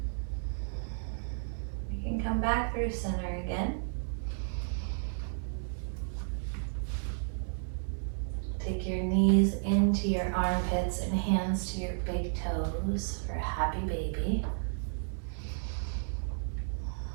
You can come back through center again. Take your knees into your armpits and hands to your big toes for a happy baby.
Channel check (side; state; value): left; silent; digital silence